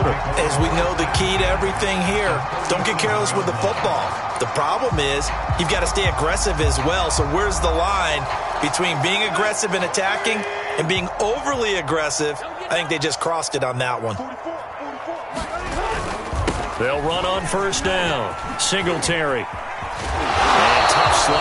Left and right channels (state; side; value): identical; both; correlation 1.00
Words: As we know, the key to everything here, don't get careless with the football. The problem is you've got to stay aggressive as well. So where's the line between being aggressive and attacking and being overly aggressive? I think they just crossed it on that one. They'll run on 1st down. Singletary. And tough